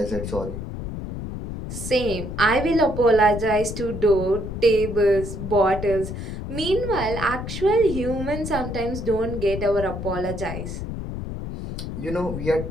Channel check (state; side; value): noise; left; rumble, 7 dB below the sound